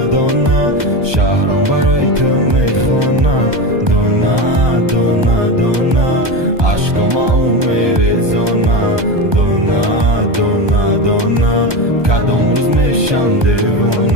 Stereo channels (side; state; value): left; late; 1.2 ms